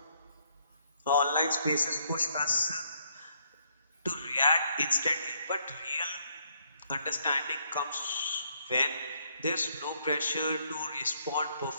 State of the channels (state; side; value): inverted; both; correlation -0.71